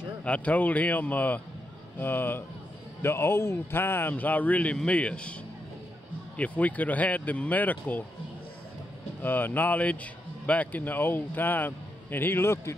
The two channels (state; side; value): normal; both; correlation 0.83